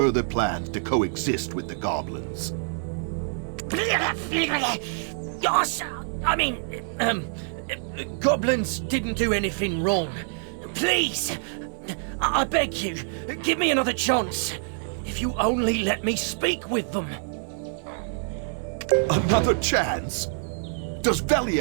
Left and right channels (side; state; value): left; silent; digital silence